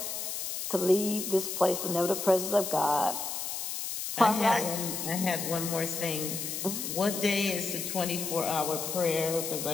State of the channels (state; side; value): noise; left; hiss, 4 dB below the sound